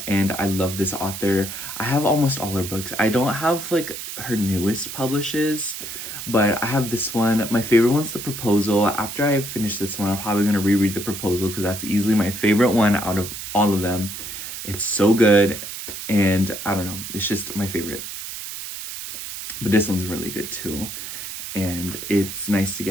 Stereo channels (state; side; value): noise; right; hiss, 8 dB below the sound